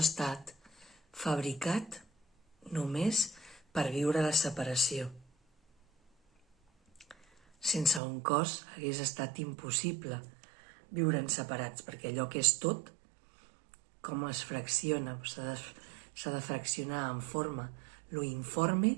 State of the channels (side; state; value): left; drops out; at 8.0 s